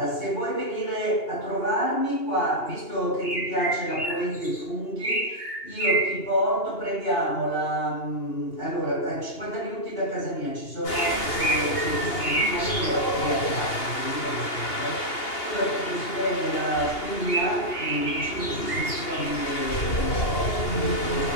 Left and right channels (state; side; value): late; right; 2.8 ms